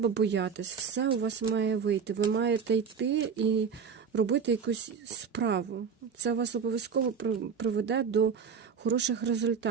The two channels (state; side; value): quieter; left; 6.3 dB